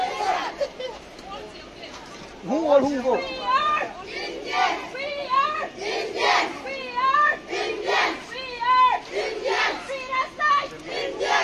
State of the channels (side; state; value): both; identical; correlation 1.00